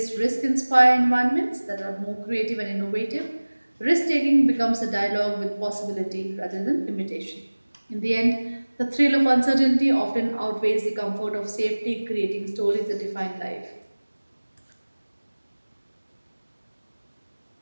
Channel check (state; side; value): inverted; both; correlation -1.00